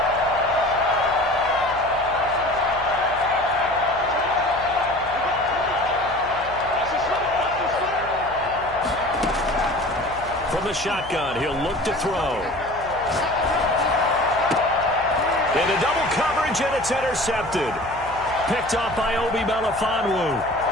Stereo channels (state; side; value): noise; left; hum, 17 dB below the sound